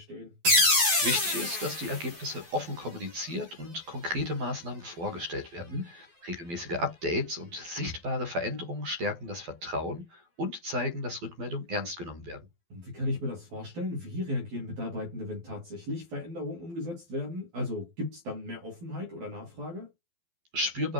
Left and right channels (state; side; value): late; left; 12 ms